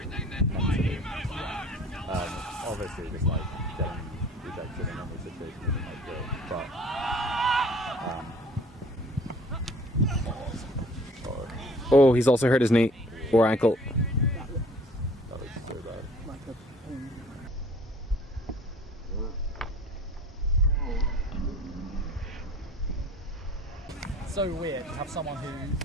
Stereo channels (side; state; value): both; normal; correlation 0.51